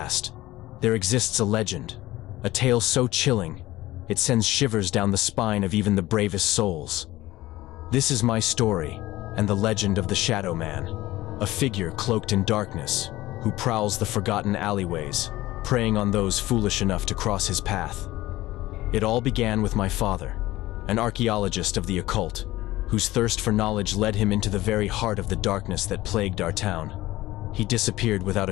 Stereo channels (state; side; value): quieter; right; 17.2 dB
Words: there exists a legend, a tale so chilling, it sends shivers down the spine of even the bravest souls. This is my story, and the legend of the Shadow Man, a figure cloaked in darkness, who prowls the forgotten alleyways, preying on those foolish enough to cross his path. It all began with my father, an archaeologist of the occult, whose thirst for knowledge led him into the very heart of the darkness that plagued our town. He disappeared without